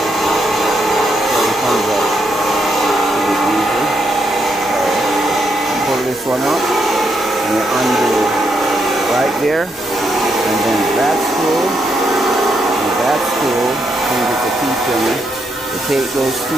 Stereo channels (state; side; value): normal; both; correlation 0.79